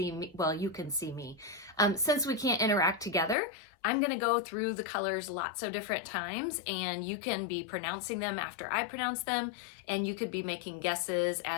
me, well, you can see me. Since we can't interact together, I'm going to go through the colors lots of different times, and you can be pronouncing them after I pronounce them, and you could be making guesses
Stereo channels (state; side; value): drops out; right; at 3.4 s